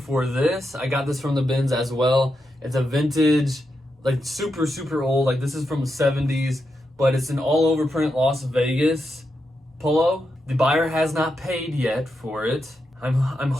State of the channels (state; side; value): normal; both; correlation 0.85